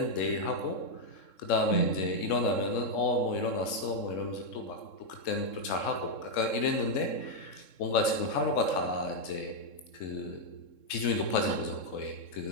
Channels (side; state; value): right; late; 3.7 ms